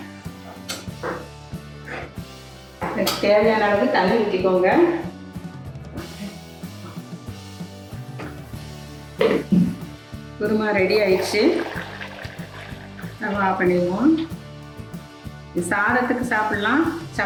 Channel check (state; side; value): identical; both; correlation 1.00